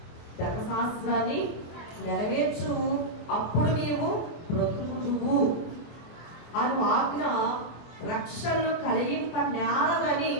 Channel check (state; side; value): late; right; 24 ms